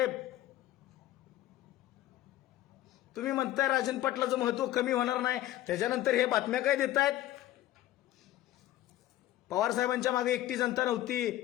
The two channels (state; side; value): quieter; right; 14.3 dB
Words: तुम्ही म्हणताय राजन पाटलाचं महत्व कमी होणार नाही, त्याच्यानंतर हे बातम्या काय देतायत? पवार साहेबांच्या मागे एकटी जनता